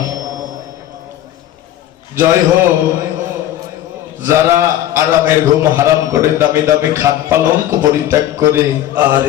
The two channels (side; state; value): right; quieter; 12.5 dB